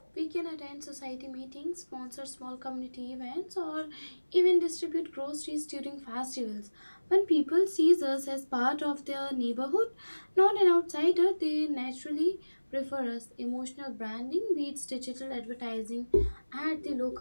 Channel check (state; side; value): inverted; both; correlation -1.00